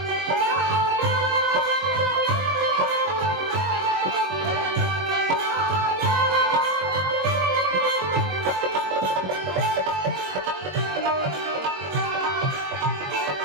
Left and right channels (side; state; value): left; late; 22 ms